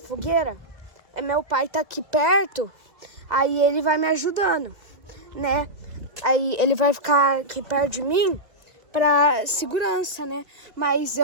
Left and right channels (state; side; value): late; left; 2.2 ms